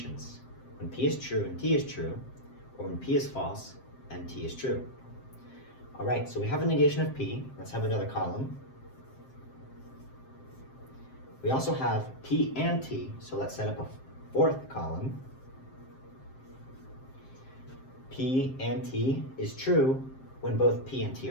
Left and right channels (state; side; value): late; right; 7.6 ms